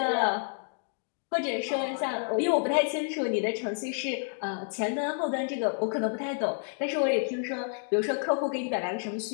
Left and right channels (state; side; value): silent; right; 58 dB below the other